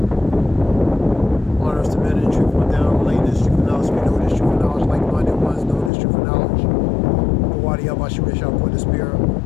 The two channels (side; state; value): right; drops out; at 5.9 s